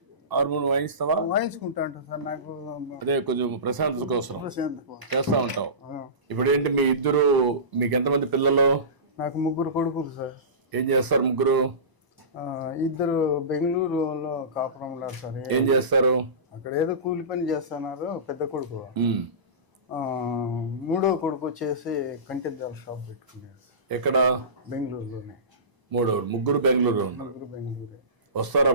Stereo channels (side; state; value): left; late; 1.0 ms